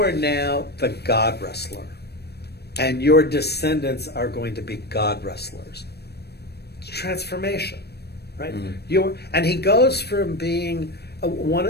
now the God wrestler. And your descendants are going to be God wrestlers. It's transformation, right? Mm-hmm. And he goes from being,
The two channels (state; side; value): late; right; 0.47 ms